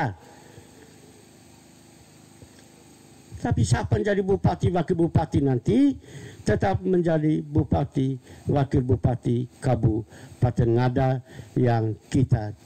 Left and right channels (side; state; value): both; identical; correlation 1.00